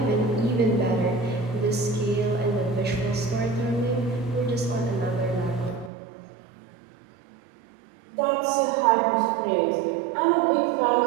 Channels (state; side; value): drops out; left; at 5.9 s